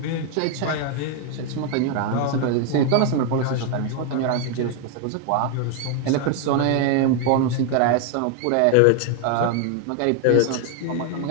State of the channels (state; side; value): different; both; correlation 0.00